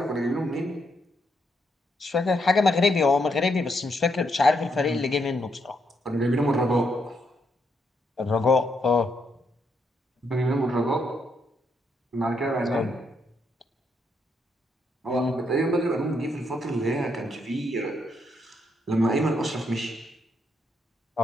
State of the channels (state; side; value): normal; both; correlation 0.77